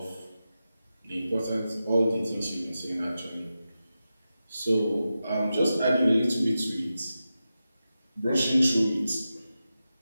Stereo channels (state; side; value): inverted; both; correlation -0.91